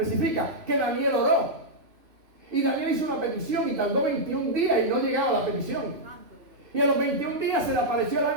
que Daniel oró. Y Daniel hizo una petición y tardó 21 días y no llegaba a la petición. Y a los 21 días se le apareció el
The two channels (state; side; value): late; left; 3.0 ms